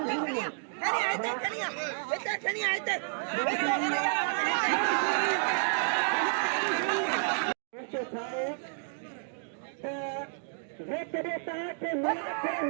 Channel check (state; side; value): silent; left; digital silence